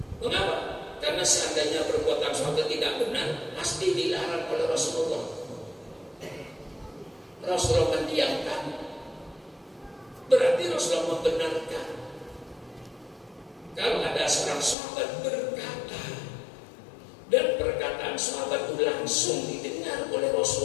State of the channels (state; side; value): drops out; right; at 14.8 s